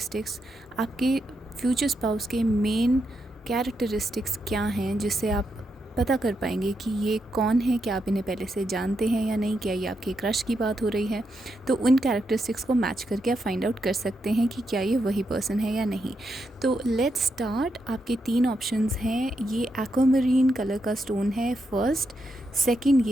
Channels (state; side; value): normal; both; correlation 0.83